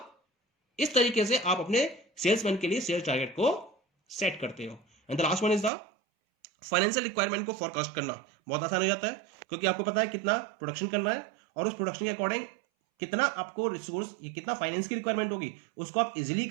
इस तरीके से आप अपने सेल्समैन के लिए सेल्स टारगेट को सेट करते हो। And the last one is the financial requirement को फोरकास्ट करना। बहुत आसान हो जाता है, क्योंकि आपको पता है कितना प्रोडक्शन करना है और उस प्रोडक्शन के अकॉर्डिंग कितना आपको रिसोर्स, कितना फाइनेंस की रिक्वायरमेंट होगी, उसको आप इजीली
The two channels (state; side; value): drops out; left; at 5.7 s